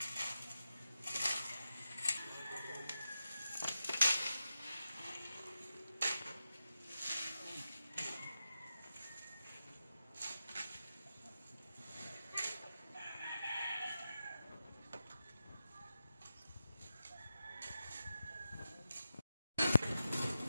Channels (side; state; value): both; inverted; correlation -0.89